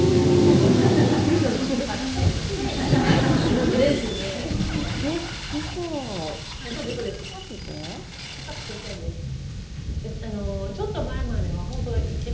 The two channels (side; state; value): both; identical; correlation 1.00